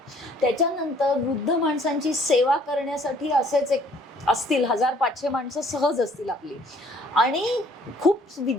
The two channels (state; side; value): normal; both; correlation 0.59